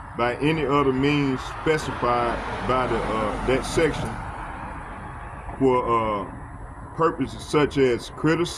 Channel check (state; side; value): identical; both; correlation 1.00